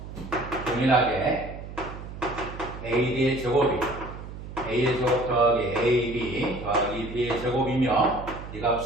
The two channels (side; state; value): right; noise; hum, 11 dB below the sound